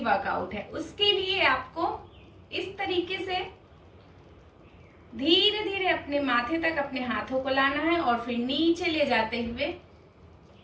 वर्कआउट है उसके लिए आपको इस तरीके से धीरे धीरे अपने माथे तक अपने हाथों को लाना है और फिर नीचे ले जाते हुए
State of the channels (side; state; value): both; identical; correlation 1.00